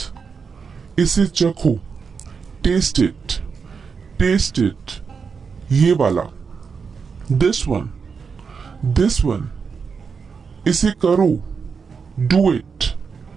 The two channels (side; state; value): left; quieter; 5.6 dB